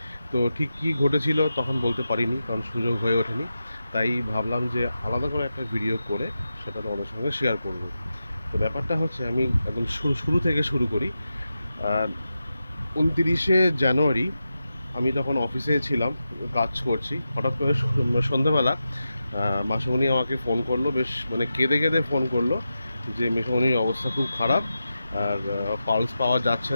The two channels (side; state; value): both; inverted; correlation -0.91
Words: তো ঠিক কী ঘটেছিল তখন বলতে পারিনি, কারণ সুযোগ হয়ে ওঠেনি। তাই ভাবলাম যে আলাদা করে একটা ভিডিও করে সেটা তোমাদের সঙ্গে শেয়ার করব। তো ব্যাপারটা হচ্ছে, আমি একদম শুরু থেকে শুরু করি। 29শে জানুয়ারি আমি তখন অফিসে ছিলাম, কাজ করছি। হঠাৎ করে সন্ধ্যাবেলা মাসুমণি আমাকে ফোন করলো, বেশ কেঁদে কেঁদে ফোন করলো যে মেসোমণির অবস্থা খুব খারাপ, আর পালস পাওয়া যাচ্ছে